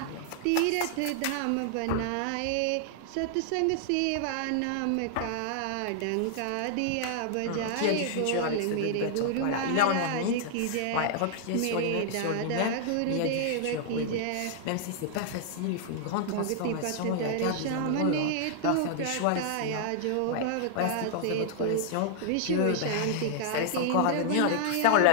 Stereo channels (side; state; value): both; different; correlation -0.01